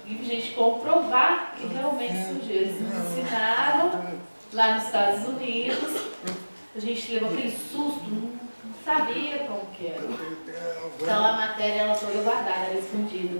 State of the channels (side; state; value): both; inverted; correlation -1.00